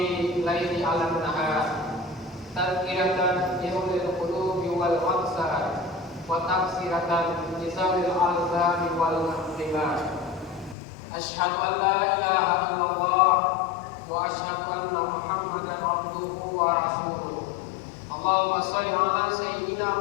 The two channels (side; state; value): right; drops out; at 10.8 s